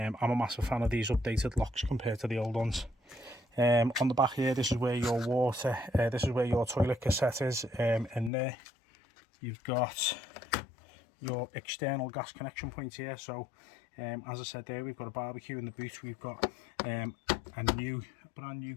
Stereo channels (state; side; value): drops out; right; at 8.3 s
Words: a massive fan of these updated locks compared to the old ones. On the back here, this is where your water, this is where your toilet cassette is. In there you've got your external gas connection point here. So as I said there, we've got a barbecue in the boot. We've got a brand new